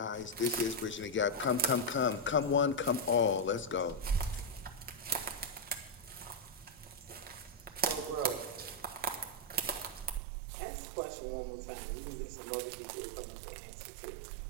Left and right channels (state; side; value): drops out; left; at 10.2 s